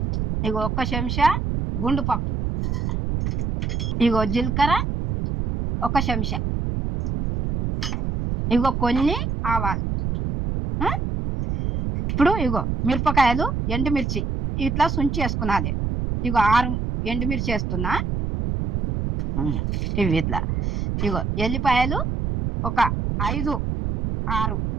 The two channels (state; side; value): noise; right; rumble, 1 dB below the sound